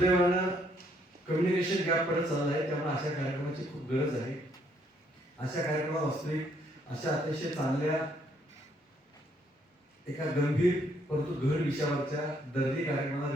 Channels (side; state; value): both; normal; correlation 0.69